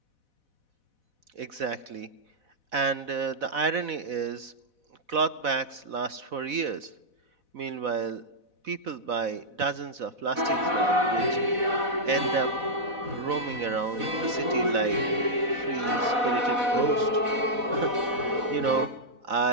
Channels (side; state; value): left; late; 4.1 ms